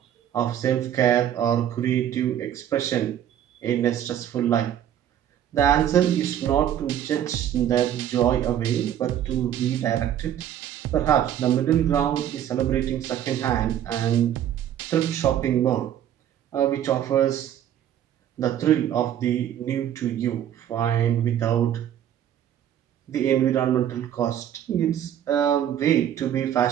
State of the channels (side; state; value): left; quieter; 10.5 dB